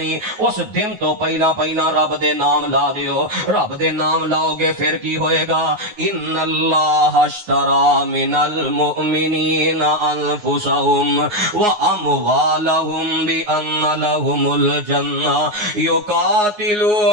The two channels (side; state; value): left; late; 9.6 ms